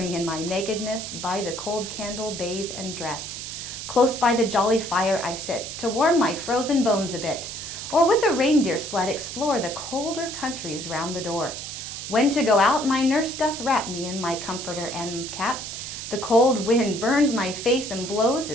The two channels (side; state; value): right; noise; hiss, 8 dB below the sound